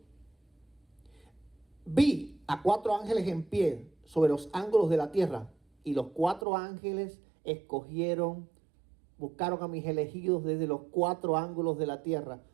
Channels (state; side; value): drops out; left; at 6.5 s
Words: vi a 4 ángeles en pie sobre los ángulos de la tierra. Y los 4 ángeles buscaron a mis elegidos desde los 4 ángulos de la tierra.